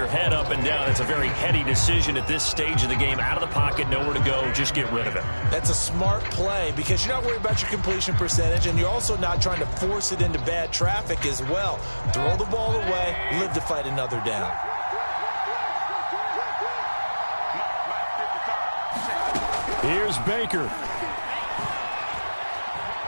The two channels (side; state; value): both; inverted; correlation -1.00